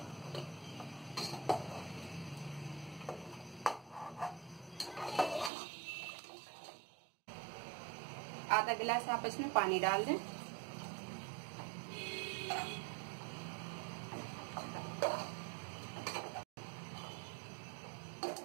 आधा गिलास आप इसमें पानी डाल दें।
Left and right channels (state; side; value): drops out; left; at 5.5 s